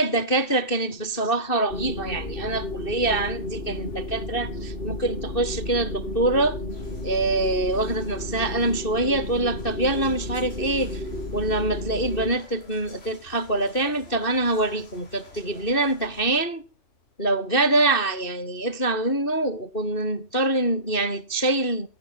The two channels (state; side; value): late; right; 2.6 ms